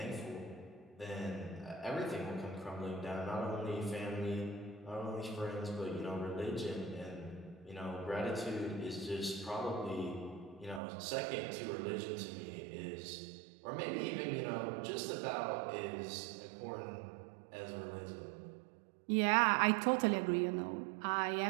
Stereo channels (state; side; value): drops out; left; at 10.8 s